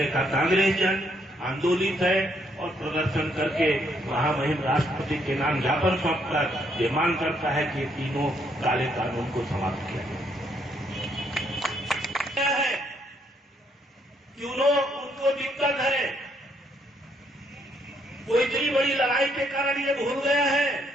का कांग्रेस जन आंदोलित है और प्रदर्शन करके महामहिम राष्ट्रपति के नाम ज्ञापन सौंपकर ये मांग करता है कि तीनों काले कानून को समाप्त किया जाए। क्यों उनको दिक्कत है, कोई इतनी बड़ी लड़ाई के कारण ये भूल गया है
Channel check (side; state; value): both; normal; correlation 0.72